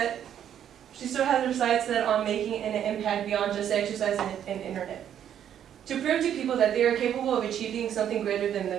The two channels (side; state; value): left; quieter; 9.8 dB